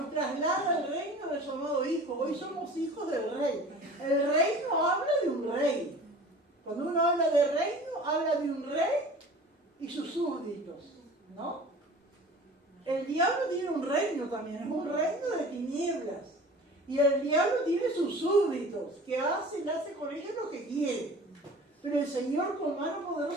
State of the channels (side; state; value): both; normal; correlation 0.42